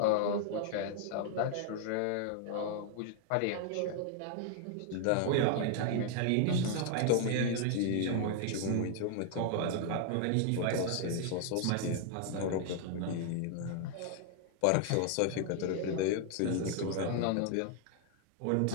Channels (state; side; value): different; both; correlation 0.00